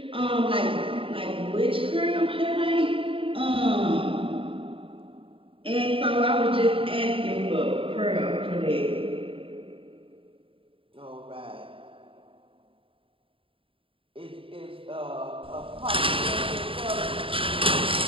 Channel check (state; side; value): late; left; 0.26 ms